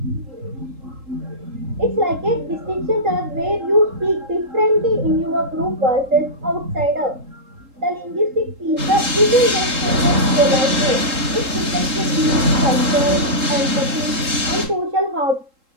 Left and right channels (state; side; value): late; left; 3.7 ms